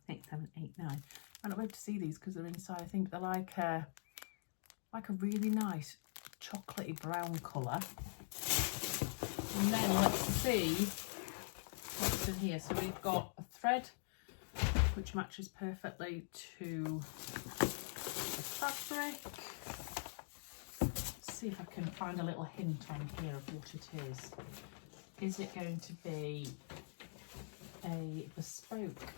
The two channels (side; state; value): right; silent; digital silence